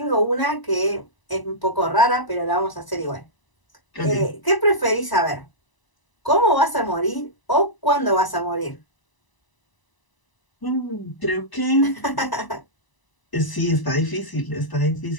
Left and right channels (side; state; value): right; late; 1.0 ms